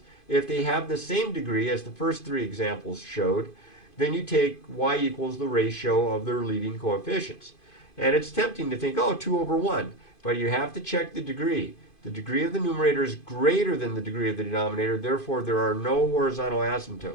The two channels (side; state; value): right; late; 2.5 ms